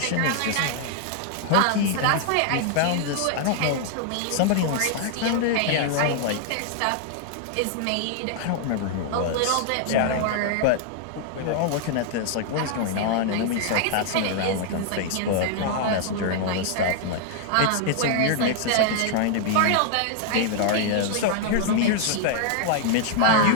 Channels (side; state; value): both; different; correlation -0.01